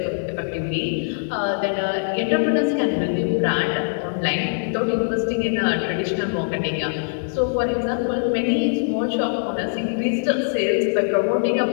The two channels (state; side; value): silent; right; digital silence